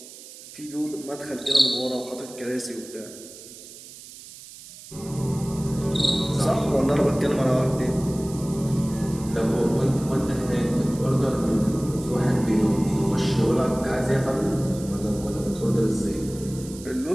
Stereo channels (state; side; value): noise; right; hiss, 17 dB below the sound